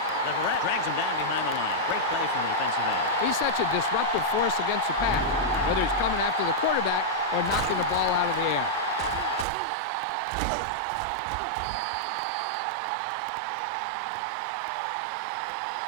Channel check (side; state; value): left; drops out; at 9.5 s